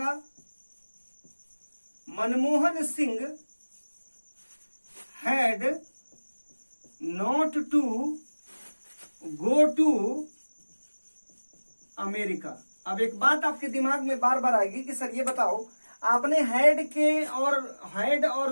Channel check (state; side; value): inverted; both; correlation -1.00